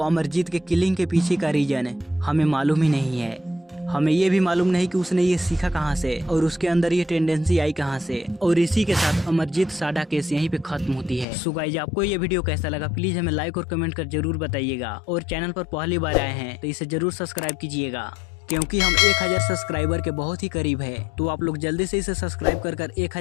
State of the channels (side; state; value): right; drops out; at 11.2 s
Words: अमरजीत के किलिंग के पीछे का रीजन हमें मालूम ही नहीं है। हमें ये भी मालूम नहीं कि उसने ये सीखा कहाँ से और उसके अंदर ये टेंडेंसी आई कहाँ से। और इसी के साथ अमरजीत साडा केस यहीं पे खत्म होती है। सो गाइस, आपको ये वीडियो कैसा लगा प्लीज हमें लाइक और कमेंट कर जरूर बताइएगा। और चैनल पर पहली बार आए हैं तो इसे जरूर सब्सक्राइब कीजिएगा, क्योंकि हम 1000 सब्सक्राइबर के बहुत ही करीब है। तो आप लोग जल्दी से इसे सब्सक्राइब कर